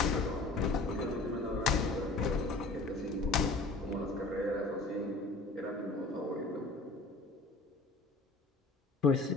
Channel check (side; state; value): right; quieter; 3.2 dB